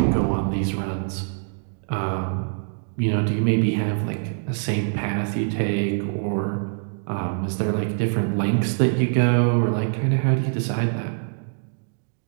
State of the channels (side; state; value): left; silent; digital silence